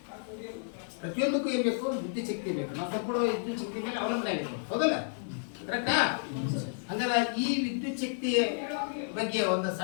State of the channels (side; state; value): right; silent; 57 dB below the other